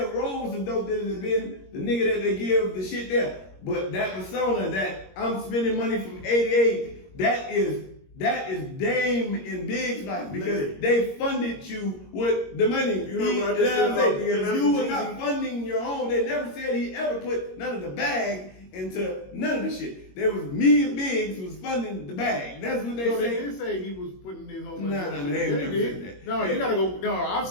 rolled some dope that has been the nigga that they give the shit there. But that persona that I'm spending money from 88, that is Dame and Big's life because they funded you with the money. You know what I just said about being If you were Jeezy? not funding your own, they never said he ever put none of the bag into none of the shit. There was me and Biggs was funding the bag. That's what they No, they say. did say he was putting his own money. Nah, on they it. ain't They never did. said that. No, you gotta go. No, I've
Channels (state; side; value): late; right; 21 ms